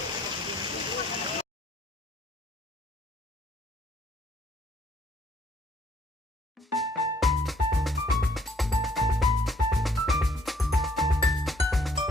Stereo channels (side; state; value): both; normal; correlation 0.64